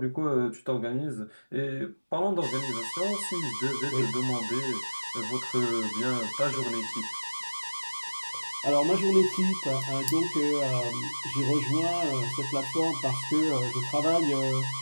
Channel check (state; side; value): inverted; both; correlation -1.00